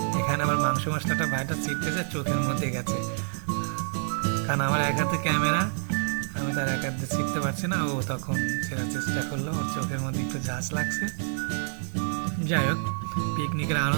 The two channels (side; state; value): left; silent; 60 dB below the other